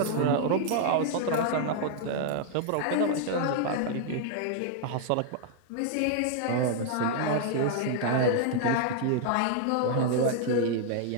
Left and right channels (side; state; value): both; different; correlation 0.00